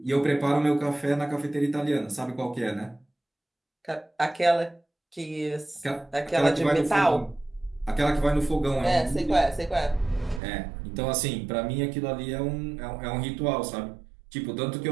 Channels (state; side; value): drops out; left; at 10.4 s